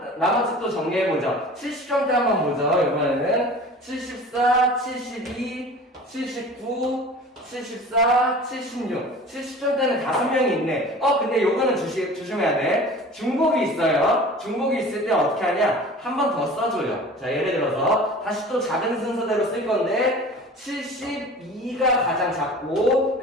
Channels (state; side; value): normal; both; correlation 0.41